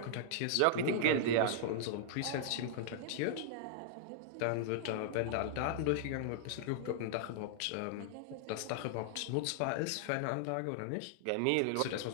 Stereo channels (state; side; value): different; both; correlation -0.01